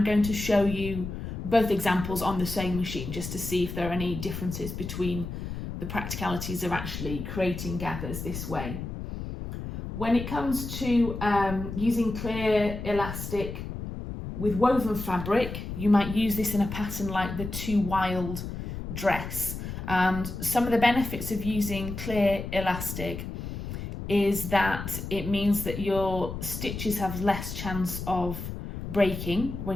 going to show you both examples on the sewing machine just to see if there are any differences between the practicalities of actually creating gathers this way. When it comes to using clear elastic with woven fabric, you might use this in a pattern like the Too Wild dress. And some of the benefits of using clear elastic is that it means that your stitches have less chance of breaking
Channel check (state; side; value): noise; left; rumble, 7 dB below the sound